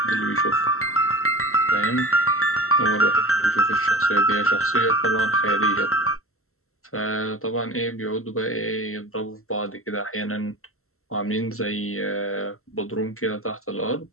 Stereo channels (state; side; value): late; right; 0.63 ms